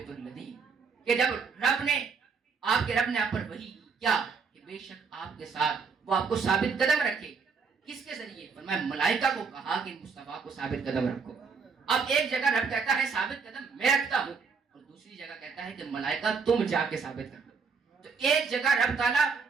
الَّذِینَ، کہ جب رب نے آپ پر وحی کی کیا کہ بے شک آپ کے ساتھ وہ آپ کو ثابت قدم رکھے۔ کس کے ذریعے؟ فرمایا ملائکہ کو کہا کہ مصطفیٰ کو ثابت قدم رکھو۔ اب ایک جگہ رب کہتا ہے ثابت قدم میں رکھتا ہوں، اور دوسری جگہ کہتا ہے کہ ملائکہ تم جا کے ثابت کر دو۔ تو ایک جگہ رب تعالیٰ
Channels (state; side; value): quieter; left; 5.3 dB